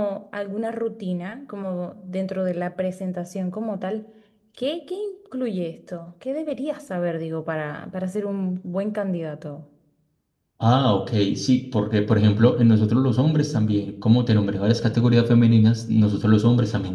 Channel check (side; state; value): both; identical; correlation 1.00